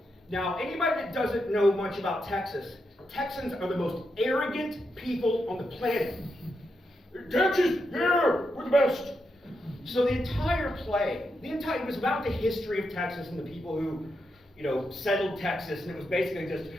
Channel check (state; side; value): normal; both; correlation 0.85